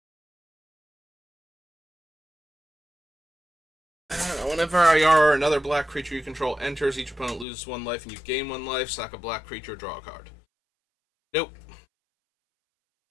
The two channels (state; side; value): drops out; right; at 7.5 s